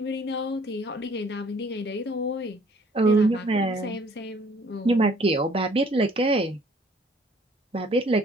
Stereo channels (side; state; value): both; normal; correlation 0.58